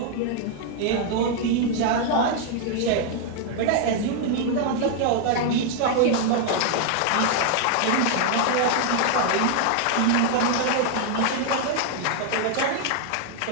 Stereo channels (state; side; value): different; both; correlation 0.00